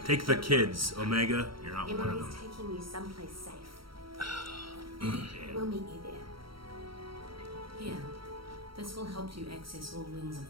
take the kids, Omega. You're not one of Emery's them. taking you someplace safe. We'll meet you there. Here, this will help you access all wings of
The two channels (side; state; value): left; late; 0.74 ms